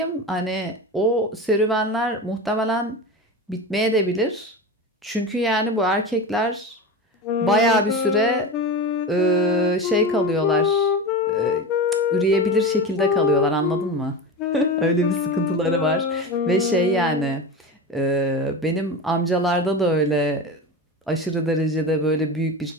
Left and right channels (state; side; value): normal; both; correlation 0.25